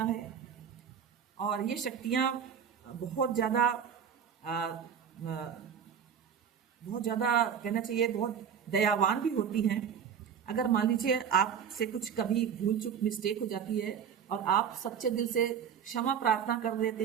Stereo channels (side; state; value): left; quieter; 7.8 dB